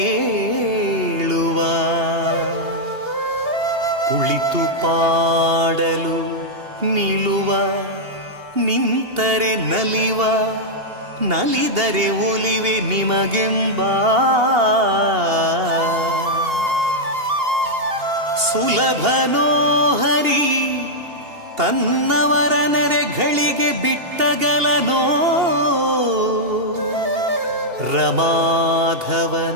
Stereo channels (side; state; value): left; late; 2.8 ms